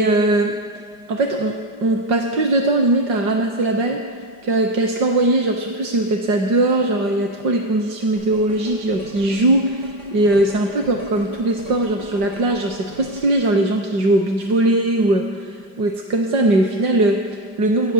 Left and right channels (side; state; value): left; late; 5.0 ms